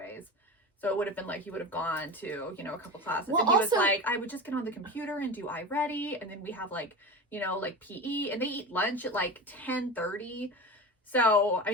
so it would have been like he would have gone to a couple classes, and he was like, I would just get on the computer and do iReady, and then we have like PE, and they eat lunch at like 10:30. So I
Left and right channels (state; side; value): normal; both; correlation 0.28